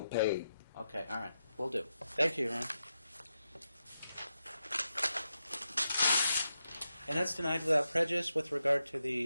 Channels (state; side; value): inverted; both; correlation -0.86